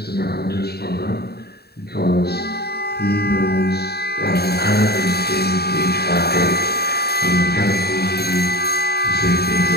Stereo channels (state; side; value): late; right; 0.47 ms